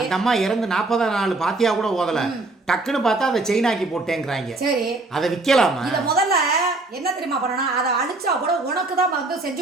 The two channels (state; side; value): quieter; left; 3.2 dB